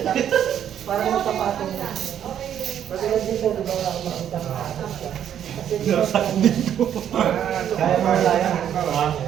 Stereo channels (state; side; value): quieter; left; 9.8 dB